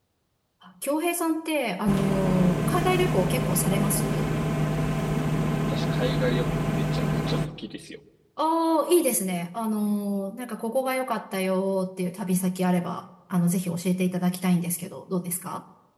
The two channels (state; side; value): identical; both; correlation 1.00